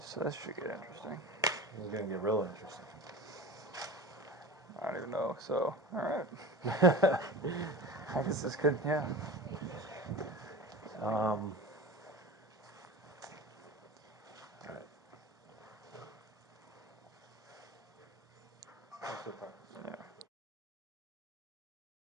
that should get interesting. It's gonna get real interesting. I don't even know. So, all right. I guess this could, yeah. All right. Yeah.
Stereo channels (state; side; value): normal; both; correlation 0.32